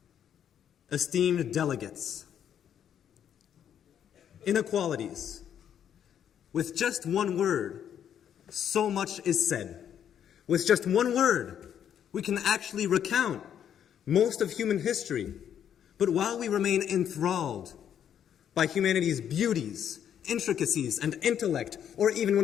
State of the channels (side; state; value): right; quieter; 9.3 dB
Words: esteemed delegates. Inequalities. With just one word, so much is said. With just one word, we can actually recount most of human history. But while we remain enthralled by humanity's beauties, intricacies, and intellect, or even